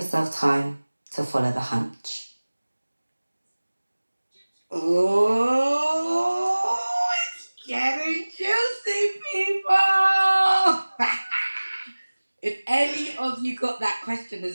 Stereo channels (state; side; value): inverted; both; correlation -1.00